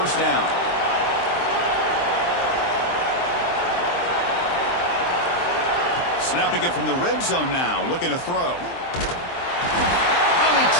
down. Snapping it from the red zone now, looking to throw. Oh, they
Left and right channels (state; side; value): late; right; 23 ms